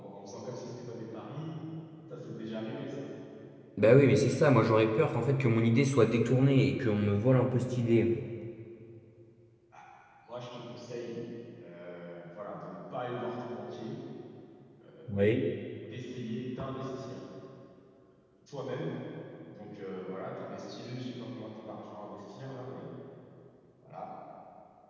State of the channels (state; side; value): identical; both; correlation 1.00